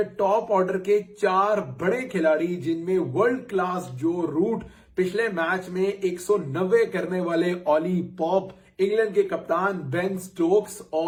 टॉप ऑर्डर के 4 बड़े खिलाड़ी, जिनमें वर्ल्ड क्लास जो रूट पिछले मैच में 190 करने वाले ऑली पॉप, इंग्लैंड के कप्तान बेन स्टोक्स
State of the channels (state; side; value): identical; both; correlation 1.00